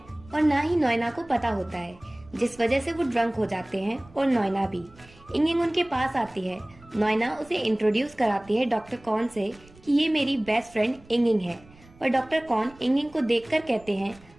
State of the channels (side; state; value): right; noise; rumble, 25 dB below the sound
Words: और ना ही नोएना को पता होता है, जिस वजह से वो ड्रंक हो जाते हैं और नोएना भी। इंगिंग उनके पास आती है। नोएना उसे इंट्रोड्यूस कराती है डॉक्टर कॉन से कि ये मेरी बेस्ट फ्रेंड इंगिंग है। पर डॉक्टर कॉन इंगिंग को देखकर कहते हैं